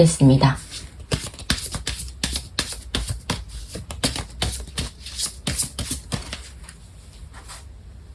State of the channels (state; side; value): identical; both; correlation 1.00